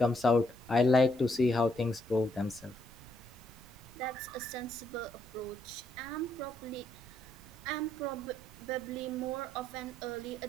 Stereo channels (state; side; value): noise; right; rumble, 20 dB below the sound